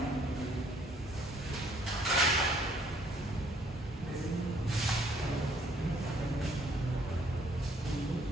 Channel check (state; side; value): normal; both; correlation 0.64